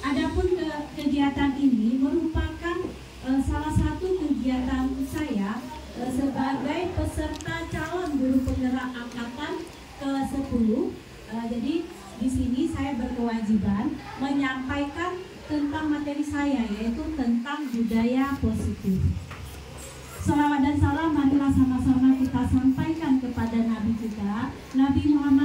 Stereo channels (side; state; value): both; identical; correlation 1.00